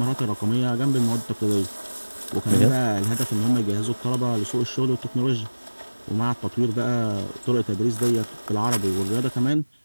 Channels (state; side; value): inverted; both; correlation -1.00